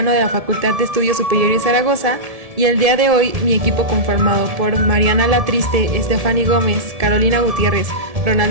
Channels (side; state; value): left; late; 1.7 ms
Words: de la Facultad de Estudios Superiores Zaragoza y el día de hoy mi equipo conformado por Mariana Latriste, Estefany Gómez, Carolina Gutiérrez,